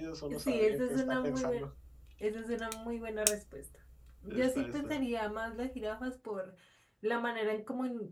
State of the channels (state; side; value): identical; both; correlation 1.00